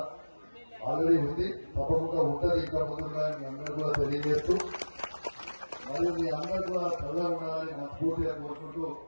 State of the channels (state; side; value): inverted; both; correlation -1.00